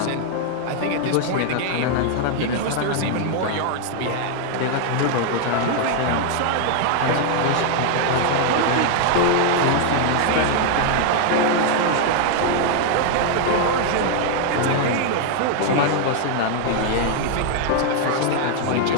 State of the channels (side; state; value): both; different; correlation 0.00